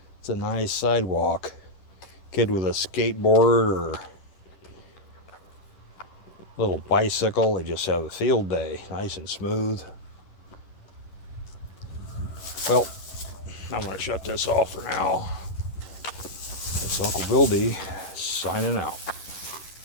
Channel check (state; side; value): late; right; 10 ms